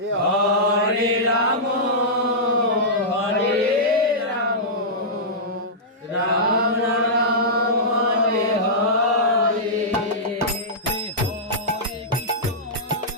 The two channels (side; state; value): both; normal; correlation -0.13